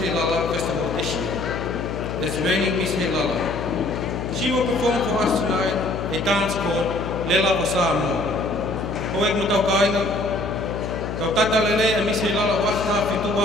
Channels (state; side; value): noise; left; hum, 5 dB below the sound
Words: Festival this year. As reigning Miss Heilala. She will perform for us tonight a dance called Lela o Samoa. Hoek mo tau kainga, tau tata lele a Miss Heilala wafta fitu